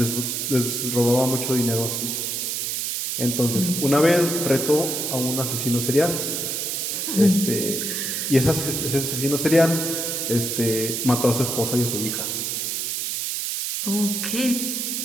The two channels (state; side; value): noise; right; hiss, 2 dB below the sound